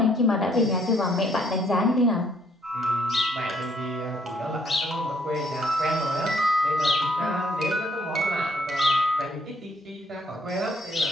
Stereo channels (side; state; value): both; normal; correlation 0.67